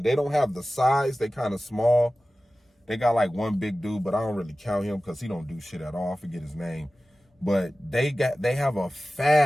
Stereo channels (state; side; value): normal; both; correlation 0.96